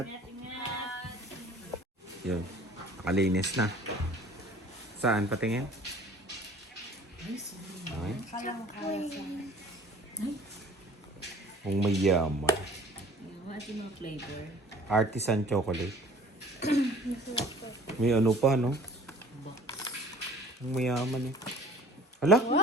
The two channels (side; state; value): both; normal; correlation 0.49